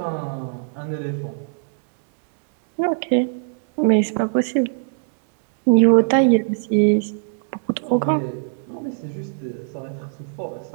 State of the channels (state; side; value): silent; left; digital silence